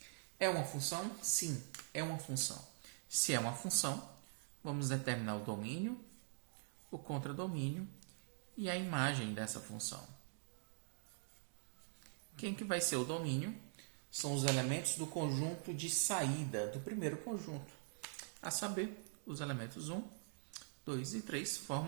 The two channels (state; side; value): silent; left; digital silence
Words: É uma função? Sim, é uma função. Se é uma função, vamos determinar o domínio, o contradomínio e a imagem dessa função. Quem que vai ser o domínio? São os elementos do conjunto de saída do primeiro conjunto. A saber, os elementos 1, 2 e 3